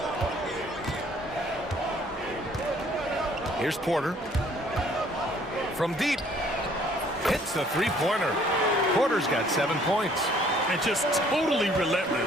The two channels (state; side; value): normal; both; correlation 0.59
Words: Here's Porter. From deep. Hits the three-pointer. Porter's got 7 points. And just totally